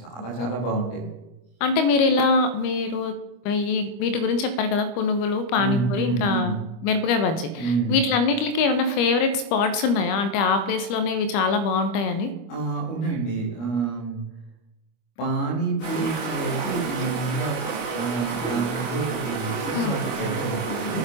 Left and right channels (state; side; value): late; right; 25 ms